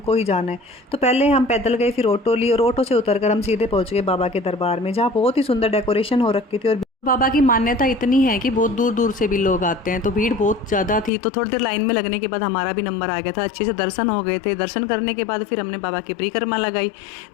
ही जाना है। तो पहले हम पैदल गए, फिर ऑटो ली और ऑटो से उतरकर हम सीधे पहुंच गए बाबा के दरबार में, जहाँ बहुत ही सुंदर डेकोरेशन हो रखी थी। और बाबा की मान्यता इतनी है कि बहुत दूर दूर से भी लोग आते हैं, तो भीड़ बहुत ज़्यादा थी। तो थोड़ी देर लाइन में लगने के बाद हमारा भी नंबर आ गया था। अच्छे से दर्शन हो गए थे। दर्शन करने के बाद फिर हमने बाबा की परिक्रमा लगाई।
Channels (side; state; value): right; drops out; at 11.1 s